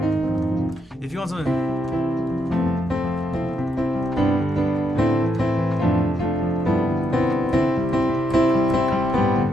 if you want something.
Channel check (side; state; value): both; normal; correlation 0.79